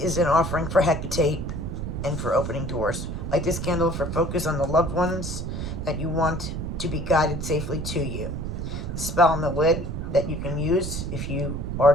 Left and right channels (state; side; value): noise; right; rumble, 4 dB below the sound